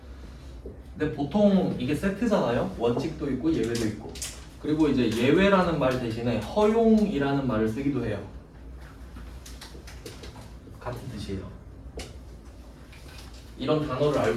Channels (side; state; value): both; identical; correlation 1.00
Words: 근데 보통 이게 세트잖아요. 원칙도 있고 예외도 있고. 그리고 이제 예외라는 말 대신에 허용이라는 말을 쓰기도 해요. 같은 뜻이에요. 이런 단어를